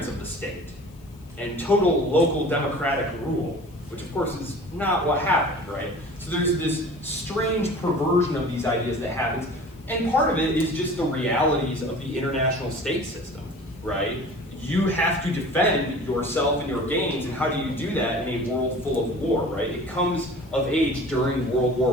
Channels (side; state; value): left; noise; hiss, 29 dB below the sound